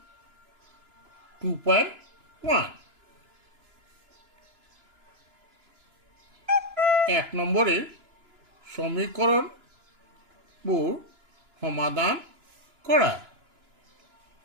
2.1 এক নম্বৰেৰ সমীকৰণবোৰ সমাধান কৰা।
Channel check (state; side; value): late; left; 2.9 ms